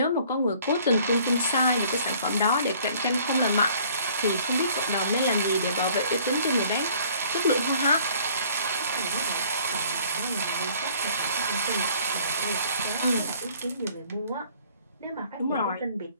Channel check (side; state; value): both; inverted; correlation -0.56